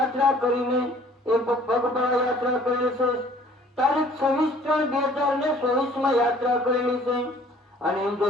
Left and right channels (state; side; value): normal; both; correlation 0.54